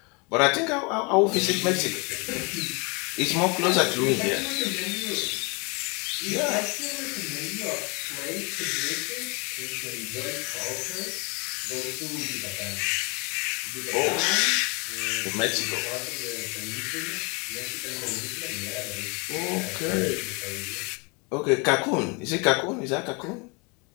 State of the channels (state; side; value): quieter; right; 30.9 dB